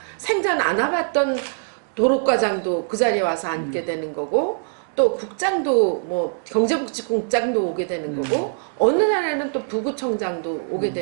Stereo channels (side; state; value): left; silent; digital silence